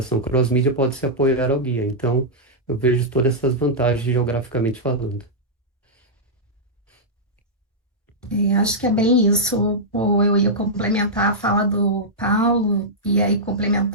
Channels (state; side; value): normal; both; correlation -0.09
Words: cross-mídia, pode se apoiar ao guia. Então, eu vejo todas essas vantagens geograficamente falando. Acho que é bem isso. Pô, eu ia complementar a fala do Paulo e aí